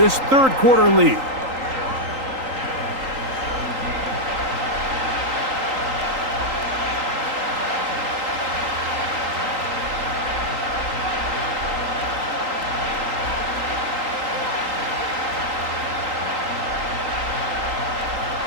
3rd quarter lead.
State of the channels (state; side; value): late; left; 3.8 ms